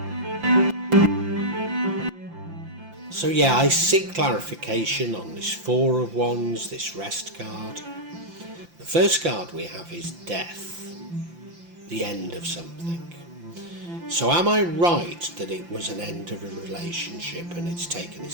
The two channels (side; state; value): left; late; 5.8 ms